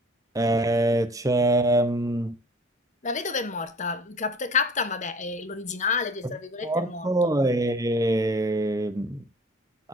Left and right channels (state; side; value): normal; both; correlation 0.47